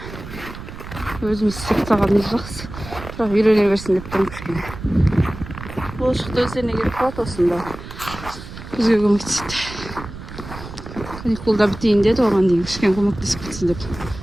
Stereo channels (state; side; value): noise; right; rumble, 12 dB below the sound